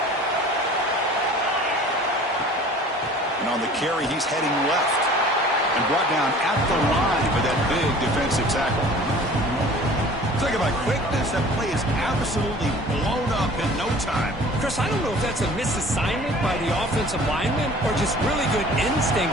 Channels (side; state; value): both; normal; correlation 0.46